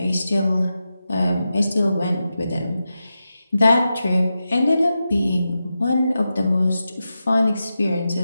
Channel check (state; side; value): inverted; both; correlation -0.91